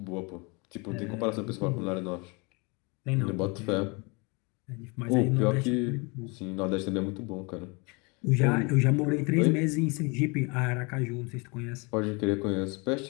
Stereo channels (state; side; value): quieter; right; 29.6 dB